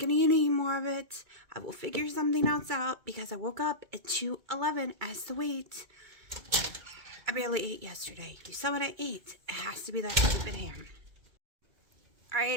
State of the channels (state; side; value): late; left; 2.3 ms